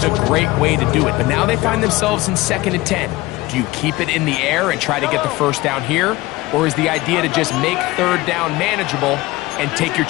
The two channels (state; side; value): quieter; right; 19.5 dB